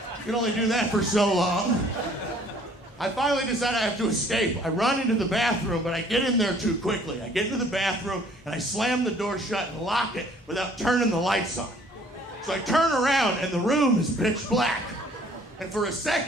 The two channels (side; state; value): both; normal; correlation 0.57